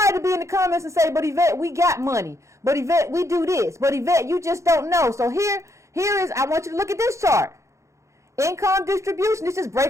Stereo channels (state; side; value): late; left; 0.14 ms